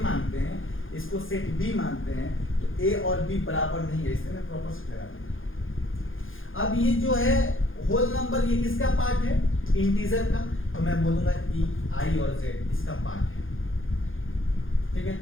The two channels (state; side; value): late; right; 0.59 ms